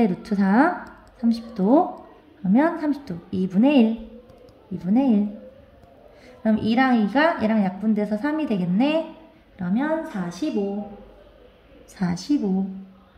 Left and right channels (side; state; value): both; identical; correlation 1.00